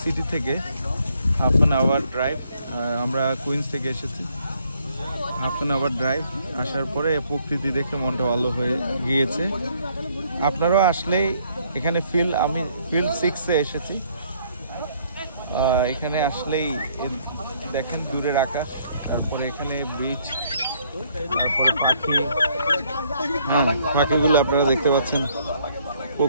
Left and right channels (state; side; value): inverted; both; correlation -0.66